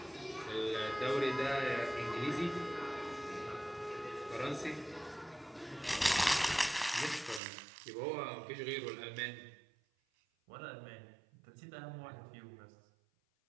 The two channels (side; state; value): left; drops out; at 7.4 s